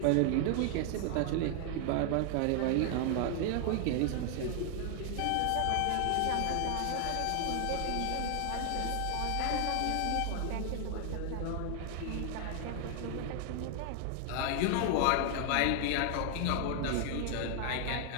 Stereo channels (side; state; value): both; different; correlation 0.00